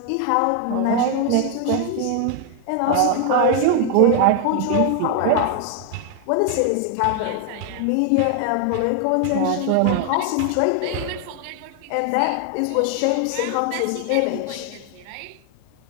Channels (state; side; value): different; both; correlation 0.00